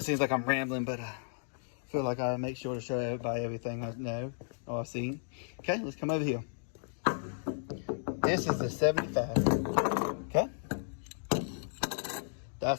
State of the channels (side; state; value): right; silent; digital silence